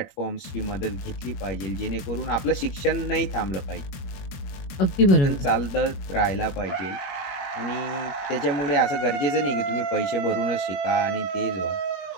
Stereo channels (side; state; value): right; late; 21 ms